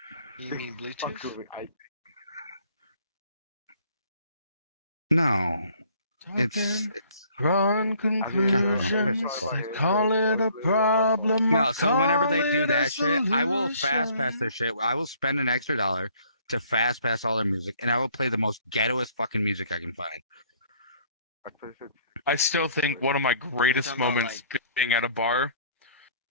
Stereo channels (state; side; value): inverted; both; correlation -0.59